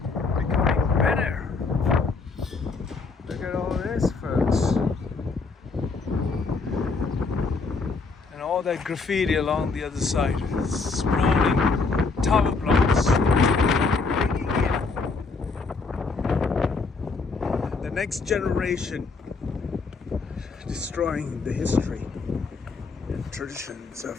becoming better. Look at all this, folks. And all that graffiti along the other side, sprawling tower blocks, the next generation, destroying the history and traditions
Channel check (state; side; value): quieter; right; 4.3 dB